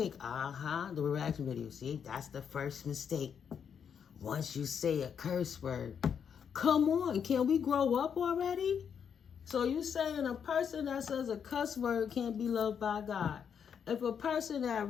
The reaction video. See, that's the first mistake. Once you say a curse word. Come on, can we grow up already? So you saying a person that says a cuss word can't be loved by God. If a person that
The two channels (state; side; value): quieter; right; 7.4 dB